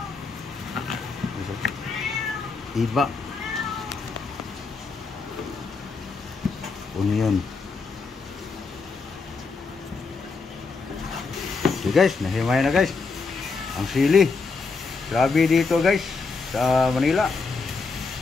iba, onion. Okay guys, nahimay na guys ang sili. Grabe dito guys sa Manila,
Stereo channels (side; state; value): right; quieter; 4.4 dB